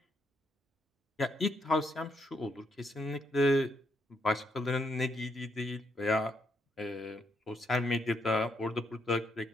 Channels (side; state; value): both; normal; correlation 0.77